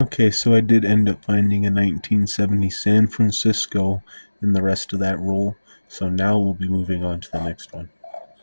Okay, so I did end up finding a 1970 San Francisco in the rest of that roll, so now we'll be moving on to the next one.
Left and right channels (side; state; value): both; inverted; correlation -1.00